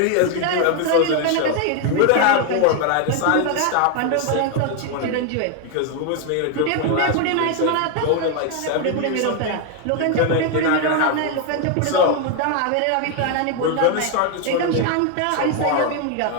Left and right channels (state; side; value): different; both; correlation 0.01